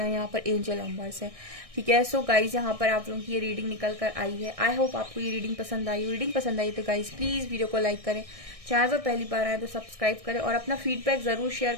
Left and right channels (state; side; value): late; left; 1.6 ms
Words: यहाँ पर एंजल नंबर्स है, ठीक है। सो गाइज यहाँ पर आप लोगों की ये रीडिंग निकल कर आई है। आई होप आपको ये रीडिंग पसंद आई। रीडिंग पसंद आई तो गाइज प्लीज वीडियो को लाइक करें, चैनल पर पहली बार आए तो सब्सक्राइब करें और अपना फीडबैक जरूर शेयर